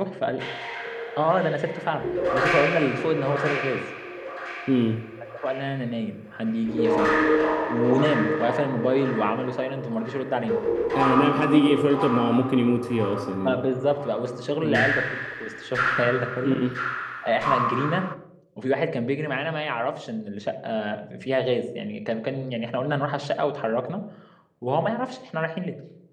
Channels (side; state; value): both; identical; correlation 1.00